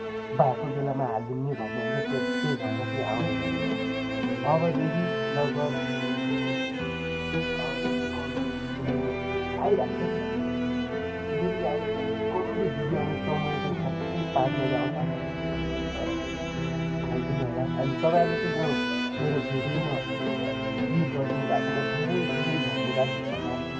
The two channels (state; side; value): identical; both; correlation 1.00